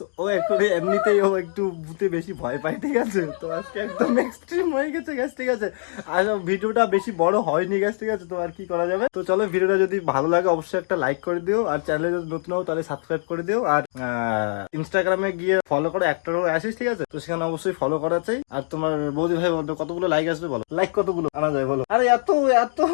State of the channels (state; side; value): silent; right; digital silence